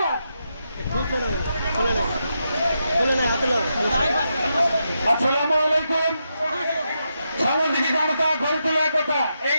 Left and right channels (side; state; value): both; inverted; correlation -0.85